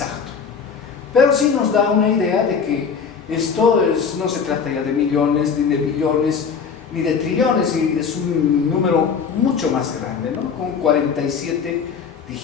Pero sí nos da una idea de que esto no se trata ya de millones, ni de billones, ni de trillones, y es un número mucho más grande, ¿no? Con 47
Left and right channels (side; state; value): right; quieter; 6.2 dB